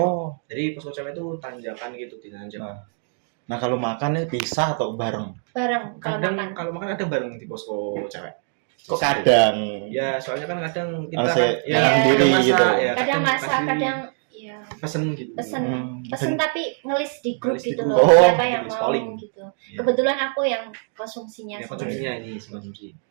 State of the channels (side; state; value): left; silent; 55 dB below the other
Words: Jadi posko cewek itu tanjakan gitu, dinanjak. Nah, kalau makan nih pisah atau bareng? Bareng kalau Kadang makan. kalau makan ada bareng di posko cewek. Kok kadang? Ya, soalnya kan kadang kita Harus kan ya, sendiri kadang masak, gitu. ya, Kadang masak, kasih kadang ya pesen gitu. pesen Hmm. pesen tapi ngelis di grup Ngelis di gitu grup. loh, Oh, siapa yang tulis mau polling. gitu. Iya. Kebetulan aku yang konsumsinya Ya, semuanya. konsumsinya ini konsumsi.